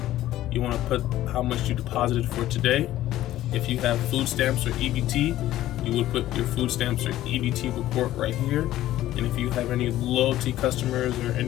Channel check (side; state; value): right; quieter; 14.2 dB